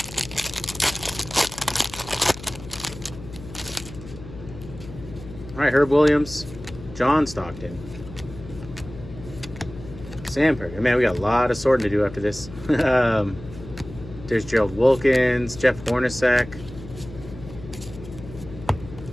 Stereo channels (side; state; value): left; noise; hum, 14 dB below the sound